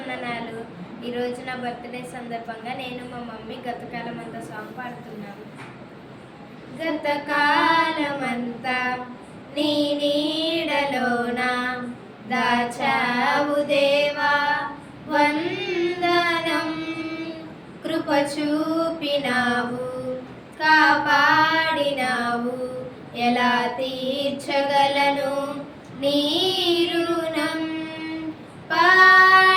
ఈరోజు నా బర్త్డే సందర్భంగా నేను మా మమ్మీ గతకాలమంతా సాంగ్ పాడుతున్నాను. గతకాలమంతా నీ నీడలోన దాచావు దేవా వందనం, కృప చూపినావు, కాపాడినావు, ఎలా తీర్చగలను నీ రుణం.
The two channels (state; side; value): identical; both; correlation 1.00